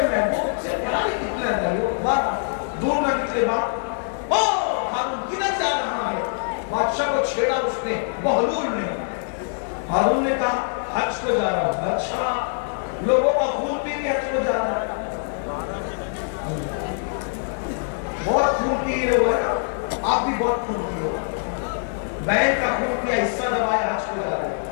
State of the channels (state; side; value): silent; right; 60 dB below the other